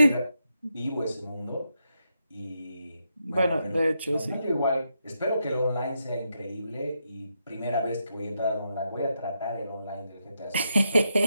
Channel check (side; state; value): both; inverted; correlation -0.83